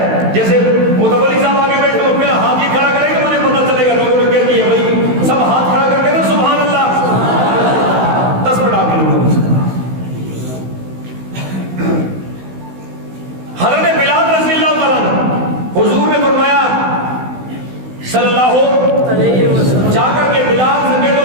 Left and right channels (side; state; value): left; late; 16 ms